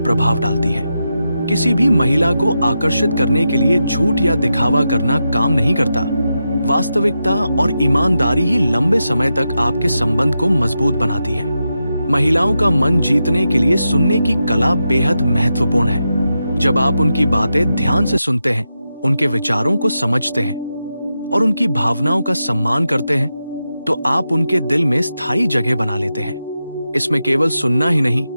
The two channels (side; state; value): both; inverted; correlation -0.88